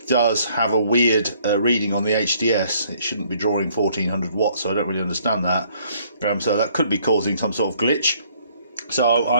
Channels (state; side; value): inverted; both; correlation -0.63